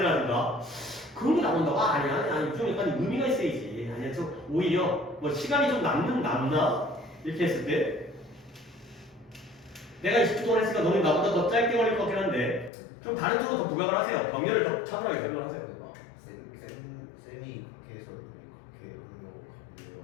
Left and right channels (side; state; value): right; drops out; at 12.7 s